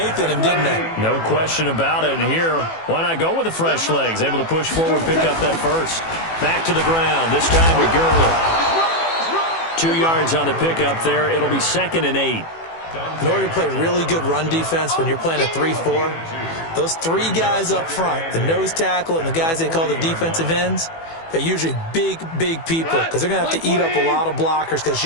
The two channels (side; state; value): right; late; 18 ms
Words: in him, didn't they? No question about it. And here, why not go with the fresh legs? Able to push forward, pick up that first. Back to the ground, this time with Gurley. 2 yards on the pickup there. It'll be 2nd and 8. In order to play really good run defense when you're playing a 3-4, those 3 guys up front, the nose tackle and the guys they call the defensive ends, they're usually big people because they're going to have to eat up a lot of blockers because it's